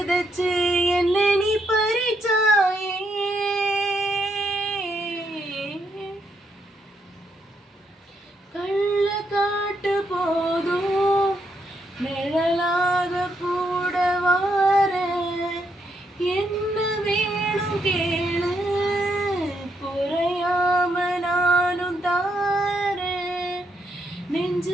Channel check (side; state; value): both; normal; correlation 0.77